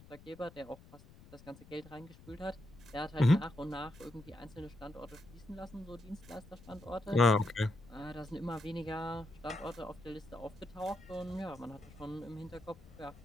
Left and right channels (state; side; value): noise; left; rumble, 20 dB below the sound